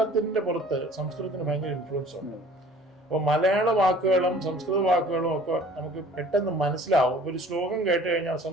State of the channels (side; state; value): both; normal; correlation 0.50